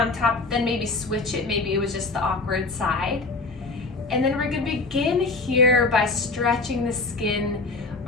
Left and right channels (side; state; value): right; quieter; 3.6 dB